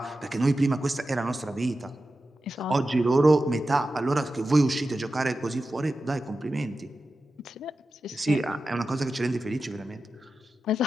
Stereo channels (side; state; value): both; normal; correlation 0.92